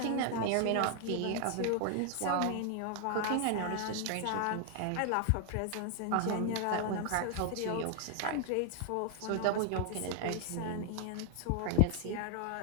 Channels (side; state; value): both; different; correlation 0.00